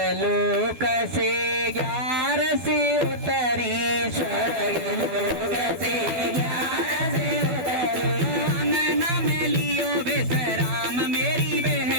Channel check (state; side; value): late; left; 12 ms